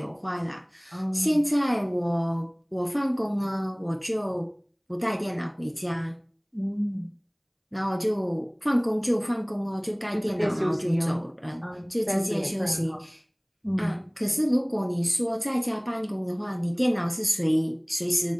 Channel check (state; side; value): identical; both; correlation 1.00